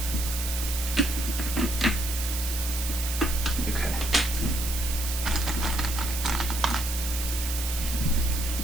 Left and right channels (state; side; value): noise; right; hiss, 5 dB below the sound